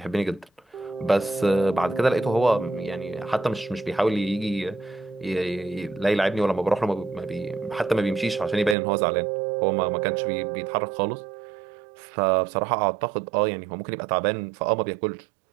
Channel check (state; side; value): drops out; left; at 8.8 s